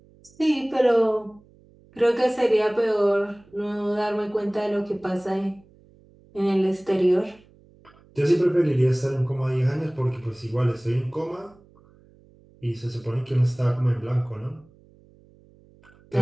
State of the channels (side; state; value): right; noise; hum, 28 dB below the sound